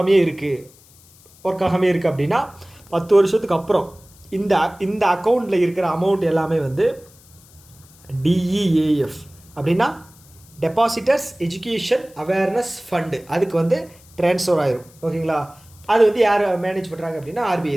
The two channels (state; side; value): noise; left; hiss, 26 dB below the sound